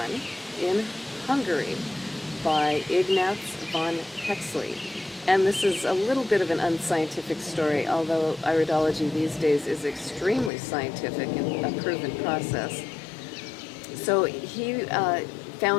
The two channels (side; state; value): right; drops out; at 10.5 s